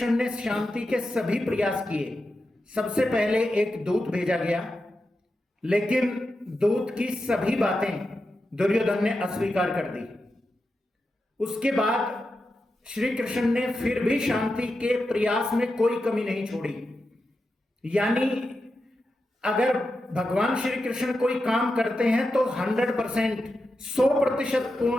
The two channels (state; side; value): normal; both; correlation 0.89